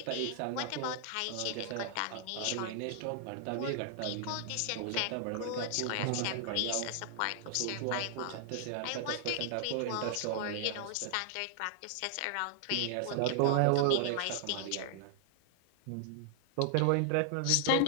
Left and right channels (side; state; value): both; different; correlation -0.01